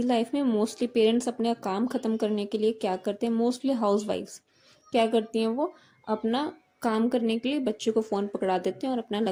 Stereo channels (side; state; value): both; identical; correlation 1.00